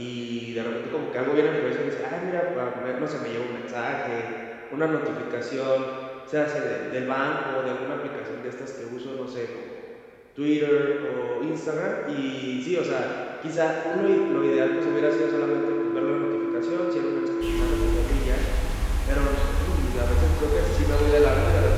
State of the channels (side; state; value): both; identical; correlation 1.00